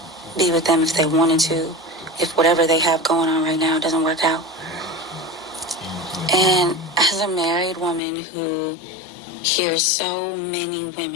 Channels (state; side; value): drops out; right; at 8.0 s